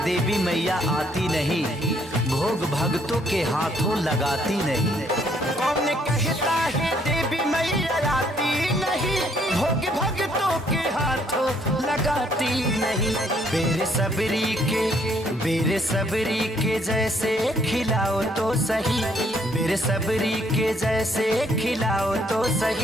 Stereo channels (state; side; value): normal; both; correlation 0.67